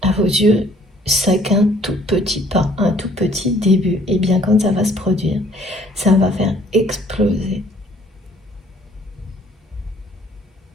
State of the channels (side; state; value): both; normal; correlation 0.59